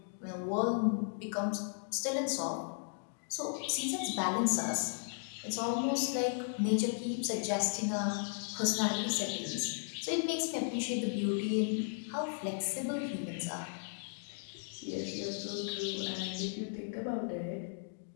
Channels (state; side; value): silent; right; digital silence